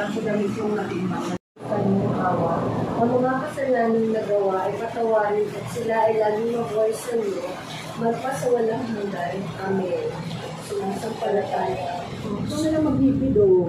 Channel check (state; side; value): identical; both; correlation 1.00